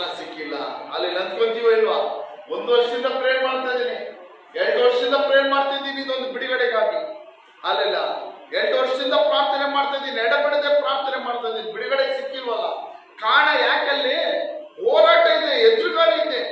ಸಿಕ್ಕಿಲ್ಲ. ಅಲ್ಲೆಲ್ಲ ಅಂದ್ಕೊಂತೀವೋ ಇಲ್ವಾ? 1 ವರ್ಷದಿಂದ ಪ್ರೇಯರ್ ಮಾಡ್ತಾ ಇದ್ದೀನಿ, 2 ವರ್ಷದಿಂದ ಪ್ರೇಯರ್ ಮಾಡ್ತಾ ಇದ್ದೀನಿ ಇದೊಂದು ಬಿಡುಗಡೆಗಾಗಿ. ಅಲ್ಲೆಲ್ಲ 2 ವರ್ಷದಿಂದ ಪ್ರಾರ್ಥನೆ ಮಾಡ್ತಾ ಇದ್ದೀನಿ, ಎಡಬಿಡದೆ ಪ್ರಾರ್ಥನೆ ಮಾಡ್ತಾ ಇದ್ದೀನಿ, ಬಿಡುಗಡೆ ಸಿಕ್ಕಿಲ್ವಲ್ಲ. ಕಾರಣ ಯಾಕಲ್ಲಿ? ಹೋರಾಟ ಇದೆ, ಎದುರುಗಾಳಿ ಇದೆ.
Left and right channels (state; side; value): identical; both; correlation 1.00